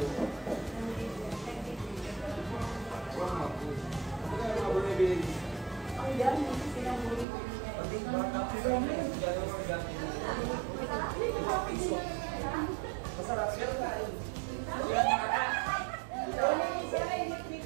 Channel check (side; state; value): left; drops out; at 7.2 s